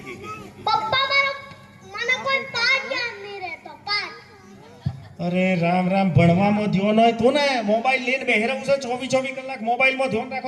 પપ્પા મને કોઈ પાઠ યાદ નહીં રહેતો. પાઠ અરે રામ રામ, ભણવામાં ધ્યાન હોય તો ને. મોબાઈલ લઈને બેહી રહું છે 24 કલાક. મોબાઈલમાં ધ્યાન રાખો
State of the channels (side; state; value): both; identical; correlation 1.00